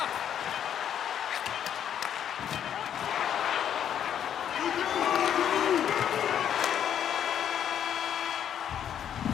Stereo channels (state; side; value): quieter; right; 9.4 dB